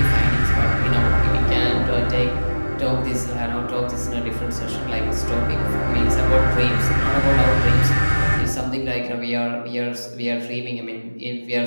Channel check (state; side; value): inverted; both; correlation -1.00